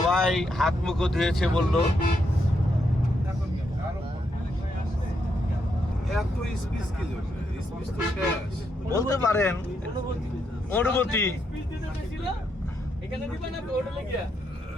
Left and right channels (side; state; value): both; normal; correlation 0.79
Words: হাত মুখ ধুয়েছে বললো। বলতে পারেন অনুভূতি।